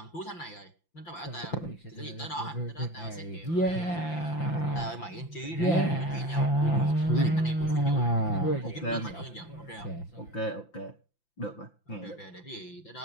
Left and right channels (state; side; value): late; right; 5.9 ms